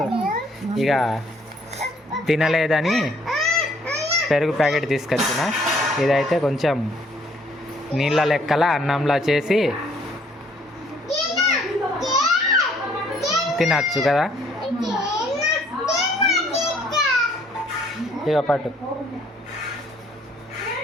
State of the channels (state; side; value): normal; both; correlation 0.63